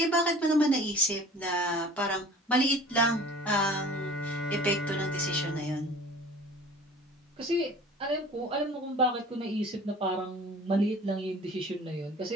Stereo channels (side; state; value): both; normal; correlation 0.45